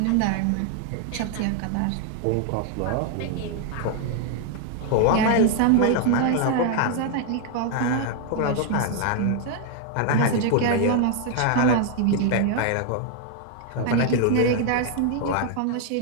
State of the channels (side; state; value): both; different; correlation 0.00